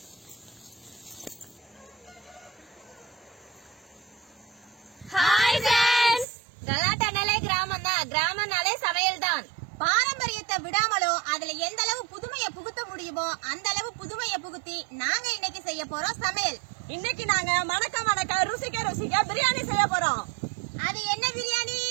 கலாட்டானாலே கிராமம் தான். கிராமம்னாலே சமையல் தான். பாரம்பரியத்தை விடாமலும் அதுல எந்த அளவு புதுமையை புகுத்த முடியுமோ அந்த அளவு புதுமையை புகுத்தி நாங்க இன்னைக்கு செய்ய போறோம் சமையல். இன்னைக்கு நாங்க மணக்க ருசிக்க பிரியாணி செய்ய போறோம். அது என்ன பிரியாணி?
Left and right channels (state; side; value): drops out; left; at 6.2 s